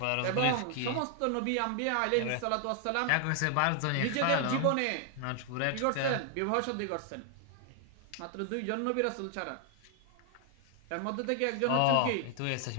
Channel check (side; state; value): both; different; correlation 0.00